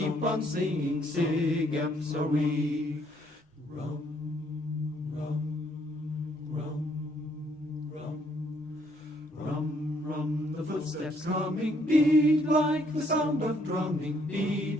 on singing, Sig Eps are we. Rum, rum, rum, rum, rum, rum, the footsteps coming, beat like the sound of drumming, beat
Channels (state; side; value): normal; both; correlation 0.68